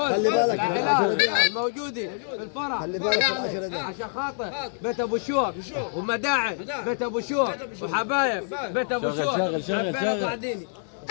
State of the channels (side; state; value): right; silent; digital silence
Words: العائلات الموجودين في الفرح. خلي بالك في العشرة دي عشان خاطر بيت ابو شوق ومداعم بيت ابو شوق وحبايب بيت ابو شوق. شغل بعدين.